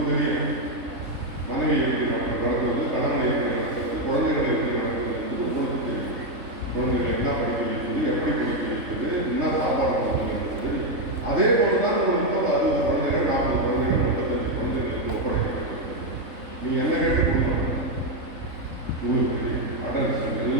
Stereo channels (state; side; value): late; left; 3.7 ms